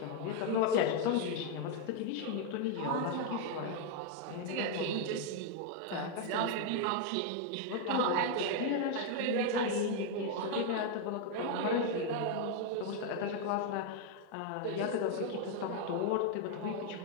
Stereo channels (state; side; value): different; both; correlation 0.00